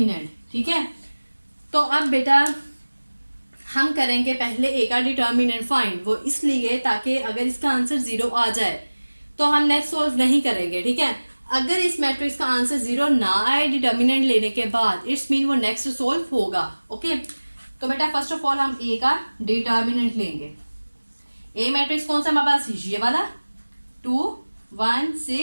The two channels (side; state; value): both; inverted; correlation -1.00